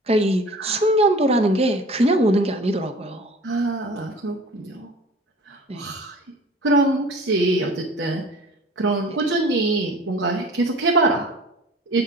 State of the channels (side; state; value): both; normal; correlation 0.44